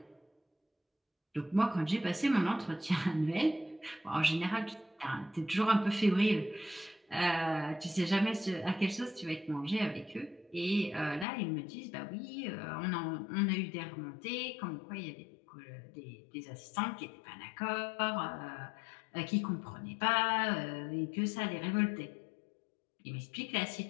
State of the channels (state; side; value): drops out; right; at 11.2 s